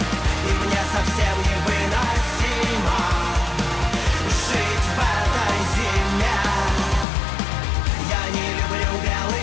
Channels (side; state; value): right; drops out; at 7.1 s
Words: и мне совсем невыносимо жить в этой зиме. Я не люблю